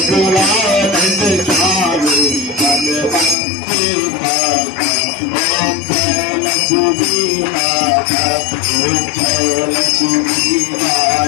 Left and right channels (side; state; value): right; drops out; at 3.4 s